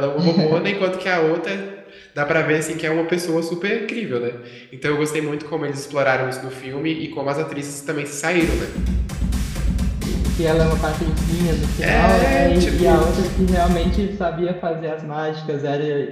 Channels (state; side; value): identical; both; correlation 1.00